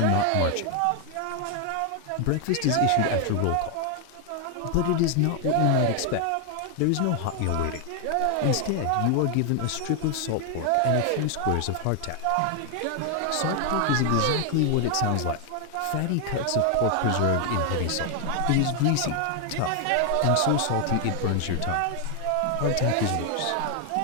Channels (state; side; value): different; both; correlation 0.00